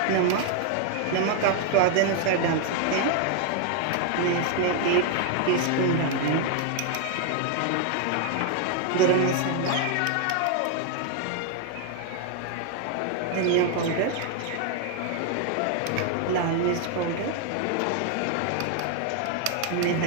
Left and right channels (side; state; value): both; different; correlation 0.00